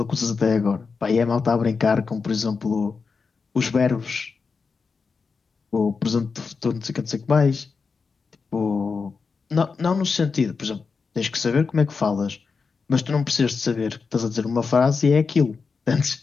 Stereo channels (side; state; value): right; quieter; 5.0 dB